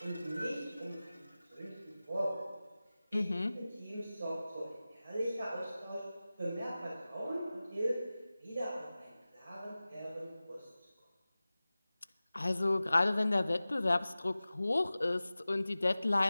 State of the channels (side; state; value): both; inverted; correlation -0.97